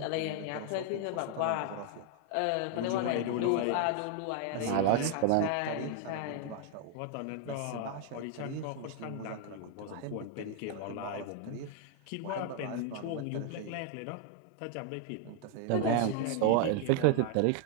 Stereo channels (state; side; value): different; both; correlation 0.00